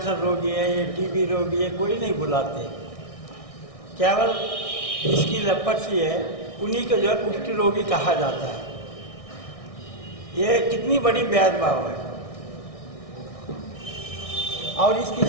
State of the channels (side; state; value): right; late; 1.6 ms